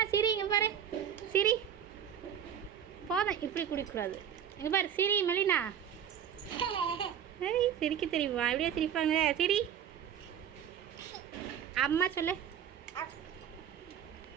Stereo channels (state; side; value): quieter; left; 9.1 dB